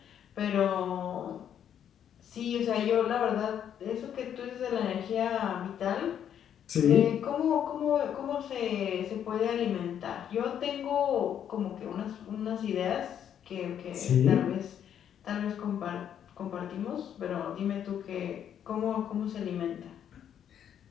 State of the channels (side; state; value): right; quieter; 9.3 dB